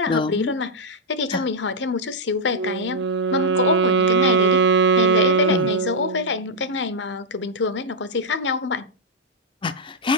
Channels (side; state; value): both; normal; correlation -0.05